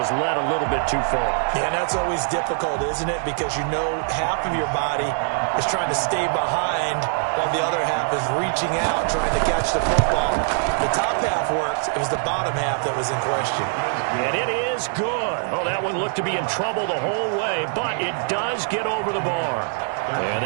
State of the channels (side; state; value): left; silent; 63 dB below the other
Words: led a little bit too far. Yeah, and that's always difficult, isn't it? Because you know half of your body is trying to stay behind while the other half is reaching out, trying to catch the football. The top half worked. It was the bottom half that was in question. And it is good. Oh, that one looked to be in trouble the whole way, but it does get over the bar. And